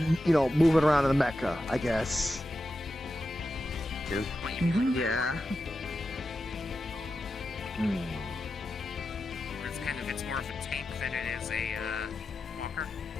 you know, moving around in the mecha, I guess. Yeah. It's more of a tank than it is a walker.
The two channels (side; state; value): both; normal; correlation 0.90